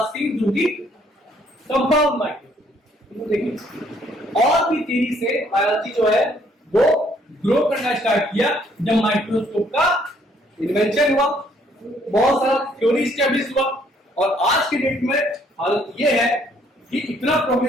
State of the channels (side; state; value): both; normal; correlation 0.65